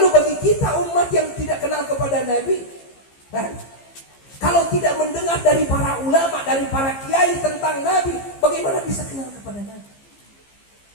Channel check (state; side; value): late; right; 15 ms